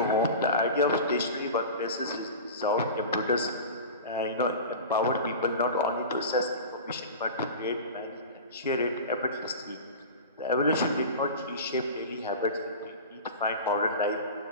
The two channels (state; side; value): inverted; both; correlation -0.32